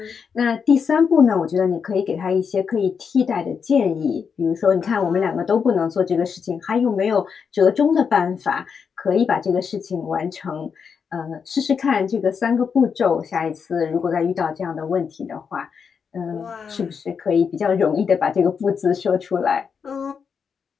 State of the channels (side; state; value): right; quieter; 6.3 dB